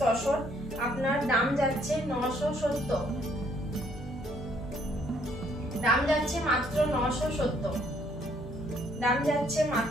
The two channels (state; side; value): normal; both; correlation 0.66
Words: তসর। আপনার দাম যাচ্ছে 970, দাম যাচ্ছে মাত্র 970, দাম যাচ্ছে